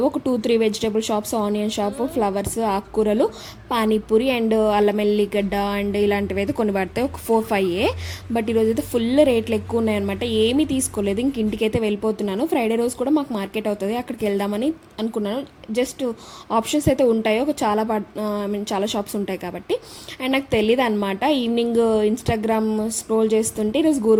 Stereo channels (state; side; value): identical; both; correlation 1.00